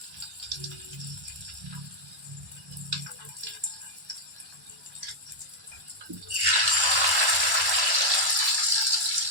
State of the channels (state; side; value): late; left; 1.1 ms